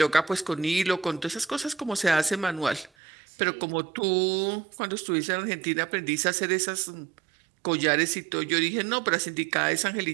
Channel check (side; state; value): left; drops out; at 2.9 s